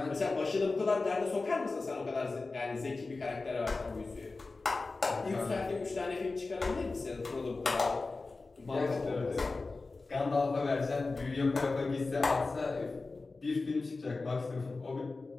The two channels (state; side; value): quieter; right; 3.7 dB